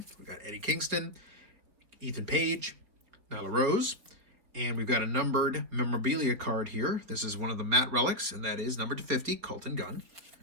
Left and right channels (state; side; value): late; left; 4.3 ms